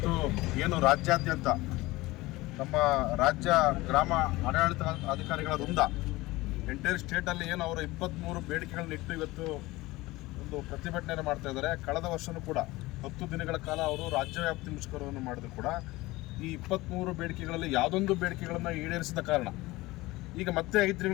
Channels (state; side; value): quieter; right; 20.0 dB